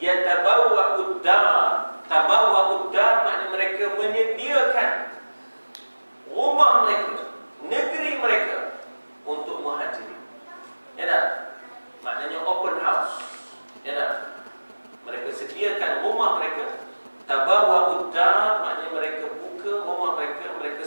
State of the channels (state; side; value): inverted; both; correlation -1.00